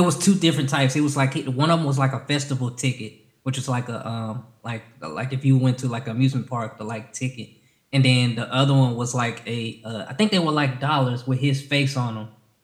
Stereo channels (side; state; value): both; identical; correlation 1.00